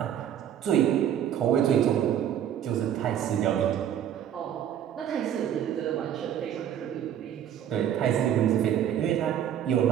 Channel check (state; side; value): quieter; left; 10.0 dB